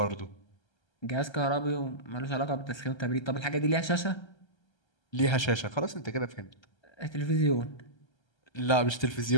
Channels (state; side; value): late; right; 1.3 ms